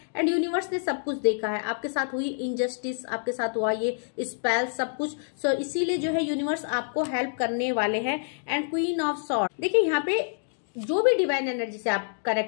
एंड यूनिवर्स ने सब कुछ देखा है, आपके साथ हुई इनजस्टिस, आपके साथ हुआ ये स्पेल, सब कुछ। सो इसीलिए जो है यूनिवर्स आपको हेल्प करने वाले हैं। एंड क्वीन ऑफ सॉर्ड, देखिए यहाँ पे जो भी डिवाइन एनर्जी से आप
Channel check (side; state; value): right; silent; digital silence